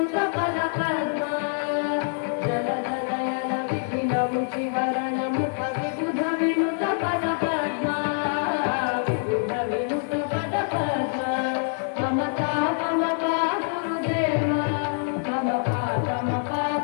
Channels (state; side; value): silent; right; digital silence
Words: पदपद्मा जनजनयन विधिन मुखिहरण मुख विबुध विनुत पदपद्मा विबुध विनुत पदपद्मा ममता ममता गुरुदेव ममता ममता